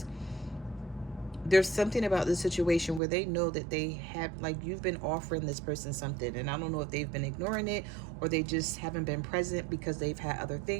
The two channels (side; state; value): left; drops out; at 3.0 s